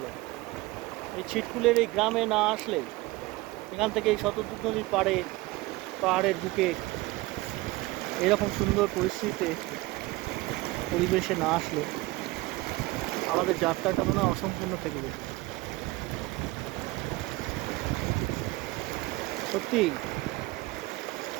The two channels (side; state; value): left; quieter; 20.4 dB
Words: এই ছিটকুলের এই গ্রামে না আসলে, এখান থেকে এই শতদ্রু নদীর পাহাড়ের বুকে এরকম সুন্দর পরিস্থিতিতে পরিবেশে না আসলে আমাদের যাত্রাটা মনে হয় অসম্পূর্ণ থেকে যেত। সত্যি